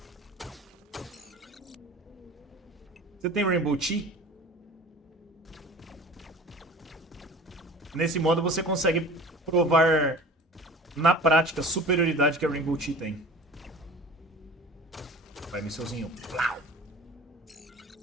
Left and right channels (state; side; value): normal; both; correlation 0.40